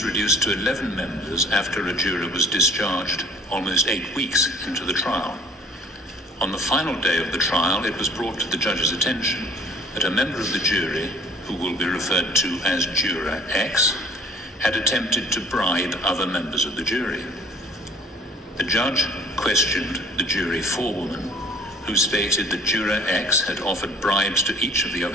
reduced to 11 members after a juror was discharged almost 8 weeks into the trial. On the final day of the trial, it was brought to the judge's attention that a member of the jury, who will be referred to as Juror X, had attempted to bribe other members of the jury. The judge questioned the jury forewoman, who stated that Juror X had offered bribes to each of the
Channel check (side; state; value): both; normal; correlation 0.52